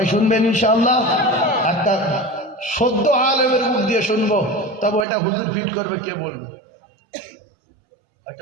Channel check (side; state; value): left; drops out; at 5.1 s